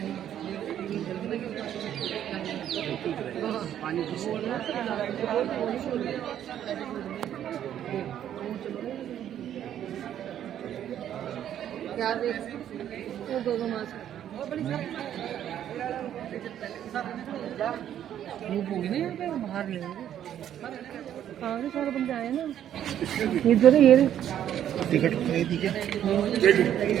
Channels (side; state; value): left; quieter; 10.5 dB